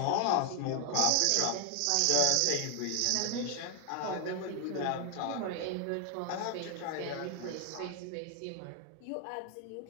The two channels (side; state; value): both; different; correlation 0.00